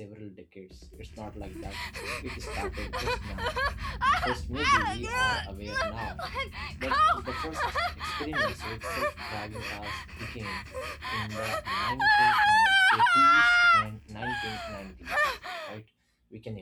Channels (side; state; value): both; identical; correlation 1.00